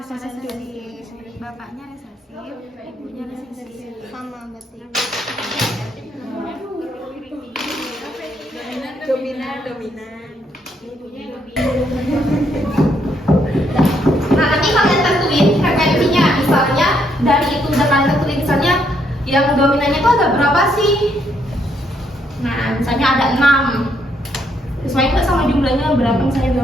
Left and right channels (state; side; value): normal; both; correlation 0.73